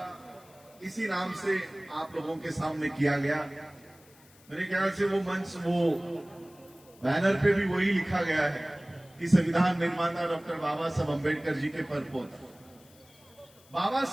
इसी नाम से आप लोगों के सामने किया गया। मेरे ख्याल से वो मंच, वो बैनर पे भी वही लिखा गया है कि संविधान निर्माता डॉक्टर बाबा साहब अम्बेडकर जी के परपोता। बाबा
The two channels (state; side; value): noise; left; hiss, 27 dB below the sound